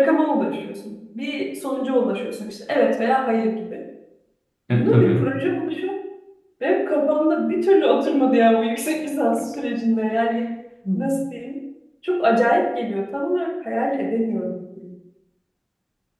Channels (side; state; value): both; identical; correlation 1.00